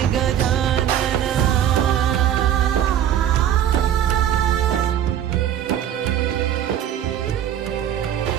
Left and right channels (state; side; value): quieter; left; 10.3 dB